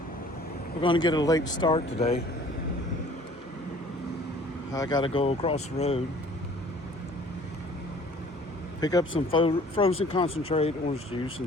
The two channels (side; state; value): both; normal; correlation 0.52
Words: We're going to get a late start today. I got to go across the road, pick up some frozen concentrate orange juice